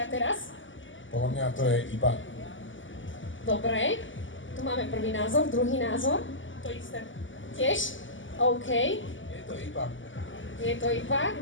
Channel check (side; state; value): right; late; 0.56 ms